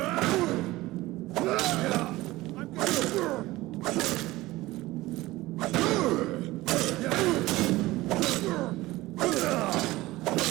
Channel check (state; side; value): quieter; left; 18.6 dB